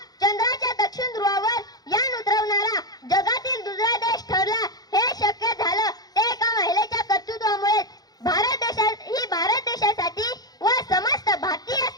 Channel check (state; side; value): late; right; 0.19 ms